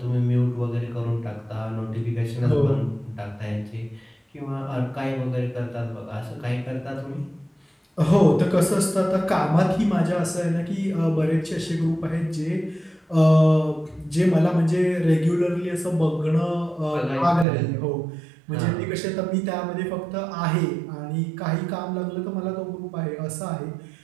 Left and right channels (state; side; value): drops out; left; at 17.4 s